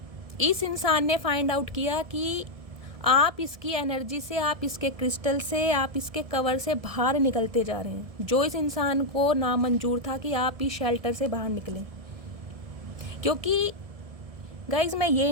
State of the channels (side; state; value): left; late; 1.7 ms